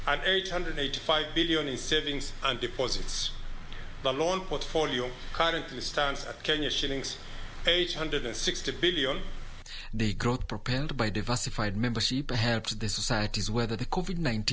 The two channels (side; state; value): both; identical; correlation 1.00